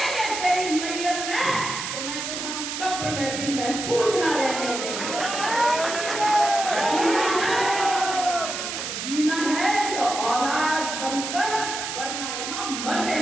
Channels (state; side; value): noise; right; hiss, 5 dB below the sound